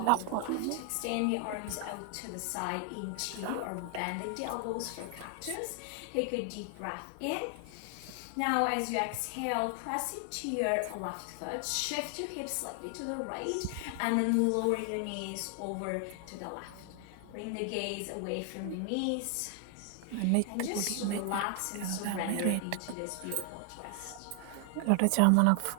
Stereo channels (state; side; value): different; both; correlation 0.00